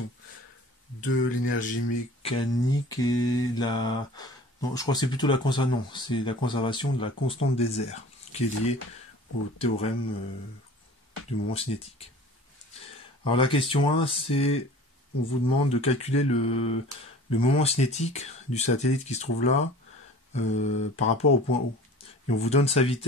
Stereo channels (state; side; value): normal; both; correlation 0.44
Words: de l'énergie mécanique et la... Non, je crois que c'est plutôt la conservation. Non, c'est la conservation de la constante des airs, qui est liée au théorème du moment cinétique. Alors la question 1, c'est, on vous demande de calculer le moment cinétique du satellite qui se trouve là par rapport au point O. Et on vous donne sa